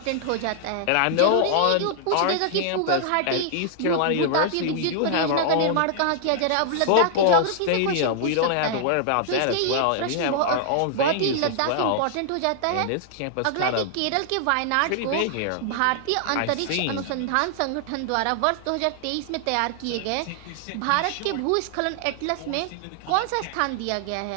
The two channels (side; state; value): both; different; correlation -0.01